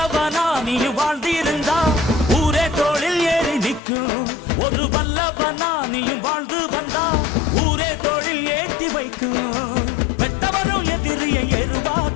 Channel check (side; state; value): right; drops out; at 3.8 s